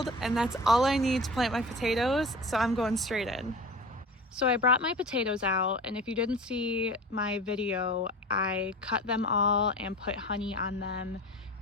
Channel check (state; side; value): normal; both; correlation 0.35